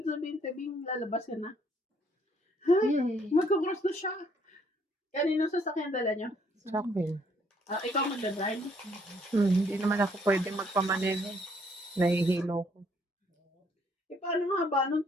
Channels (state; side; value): normal; both; correlation 0.66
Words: sabihin, Tebing, lalabas ka na. Yay. Magkakross na siya. Kanino sasakyan dala nyo? Sa akin. Ikaw magdadrive? Hindi naman ako pwede magpamaneno. Nahihilo ko. Paano nga ba? Nung